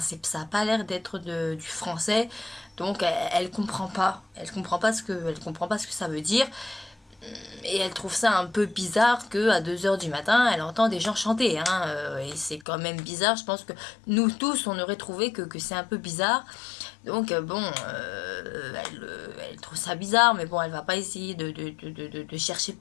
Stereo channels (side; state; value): right; drops out; at 12.7 s